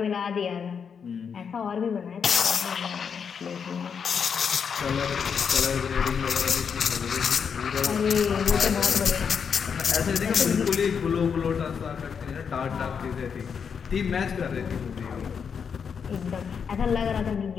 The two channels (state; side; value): quieter; right; 6.7 dB